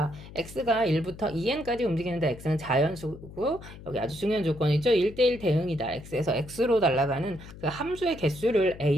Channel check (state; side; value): noise; left; hum, 16 dB below the sound